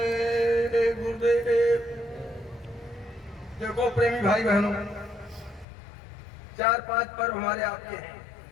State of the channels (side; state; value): right; drops out; at 5.7 s